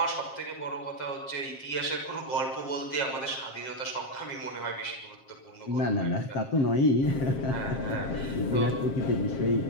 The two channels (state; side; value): late; right; 7.5 ms